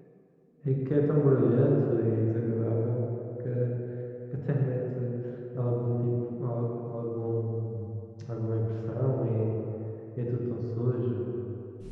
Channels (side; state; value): both; identical; correlation 1.00